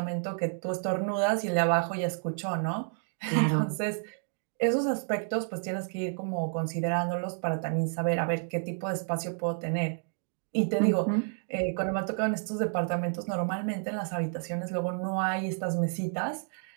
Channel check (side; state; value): left; silent; 58 dB below the other